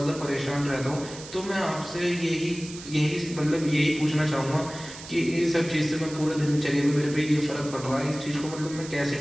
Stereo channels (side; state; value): right; noise; hiss, 14 dB below the sound